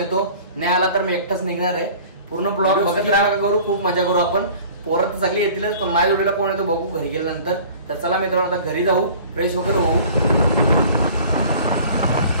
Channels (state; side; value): inverted; both; correlation -0.46